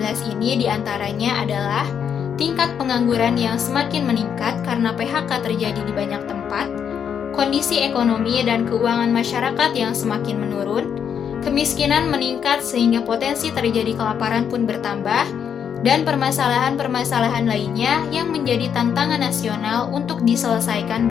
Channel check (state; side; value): quieter; right; 7.9 dB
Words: ini diantaranya adalah tingkat pengangguran yang semakin meningkat karena PHK terjadi di banyak tempat, kondisi ekonomi dan keuangan masyarakat yang semakin menurun, kemiskinan meningkat sehingga potensi terjadi kelaparan pun bertambah, dan permasalahan-permasalahan lainnya yang menjadi tantangan nasional untuk diselesaikan